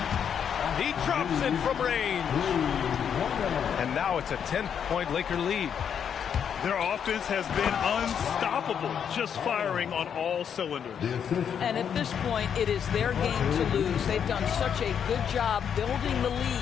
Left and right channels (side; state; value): right; quieter; 8.0 dB